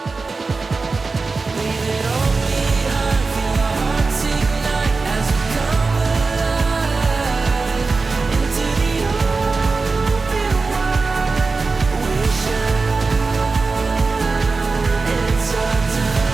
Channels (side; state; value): left; quieter; 4.1 dB